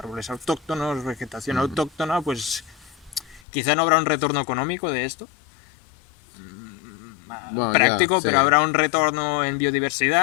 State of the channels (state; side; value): drops out; right; at 3.4 s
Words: autóctonos, vegetación autóctona, pues quizá no habrá un retorno económico de esto, práctico, pero habrá un retorno en